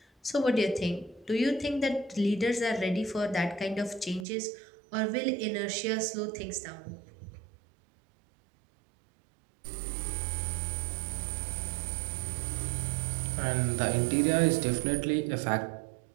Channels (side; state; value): left; drops out; at 4.2 s